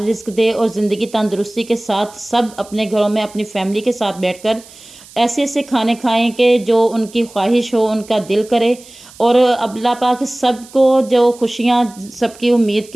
रिस्क दे और ज़िंदगी तंदुरुस्ती के साथ सब अपने घरों में अपनी फैमिली के साथ बैठकर ऐसे ऐसे खाने खाएं कि जो उनकी ख्वाहिश हो, उनका दिल करे। और अल्लाह पाक सबको जो खुशियाँ सबकी उम्मीद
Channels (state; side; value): noise; right; hiss, 22 dB below the sound